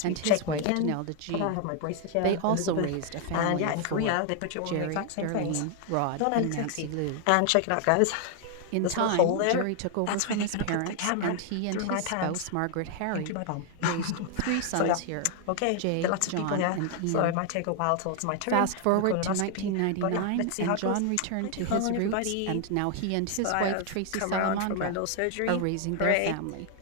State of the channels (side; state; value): both; different; correlation 0.00